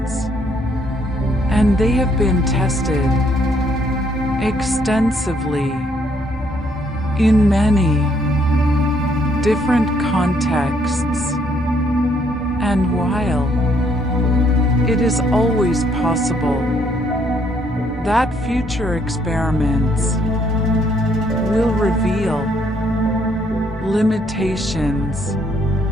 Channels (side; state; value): both; normal; correlation 0.69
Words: and they have been tested extensively in many different contexts. And while it is always possible that future experiments will reveal limitations